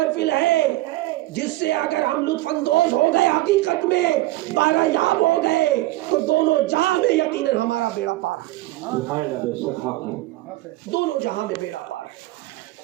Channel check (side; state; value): left; quieter; 18.0 dB